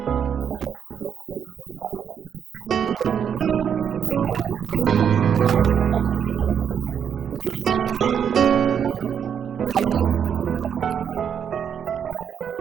I thought you made me talk a lot, but you didn't. No, because of you. Oh, that's nice. But are you going with us? No, actually, I have a meeting tomorrow, so I'll be leaving for Zimbabwe tomorrow.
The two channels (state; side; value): quieter; left; 8.0 dB